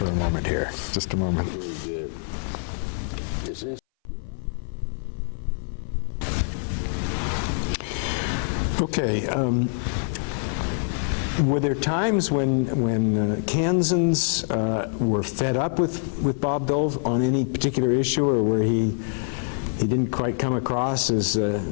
a moment here. Just a moment. Very good. Is this? Okay. Were there times when Kansans were fed up with Bob Dole on any particular issue, or where he didn't quite come across as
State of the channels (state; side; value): silent; right; 59 dB below the other